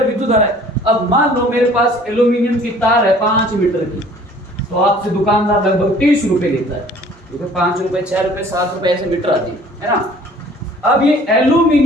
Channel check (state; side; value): normal; both; correlation 0.52